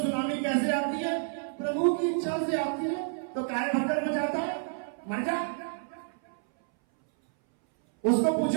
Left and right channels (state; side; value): silent; left; 58 dB below the other